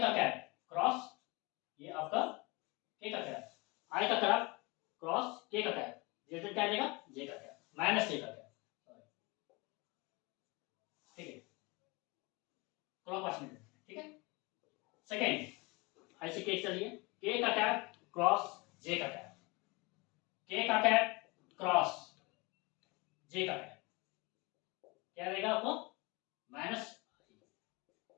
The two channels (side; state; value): right; quieter; 26.1 dB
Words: का कैप क्रॉस ये आपका के का कैप, आई का कैप क्रॉस के का कैप, रिजल्ट क्या देगा, जे का कैप माइनस के का कैप, ठीक है, क्लॉकवाइज में, ठीक है। सेकेंड ऐसे केस चलिए के का कैप क्रॉस जे का कैप, के का कैप क्रॉस जे का कैप क्या देगा आपको, माइनस,